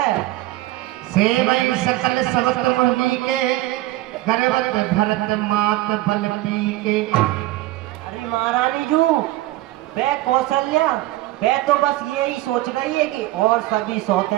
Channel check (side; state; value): left; quieter; 17.2 dB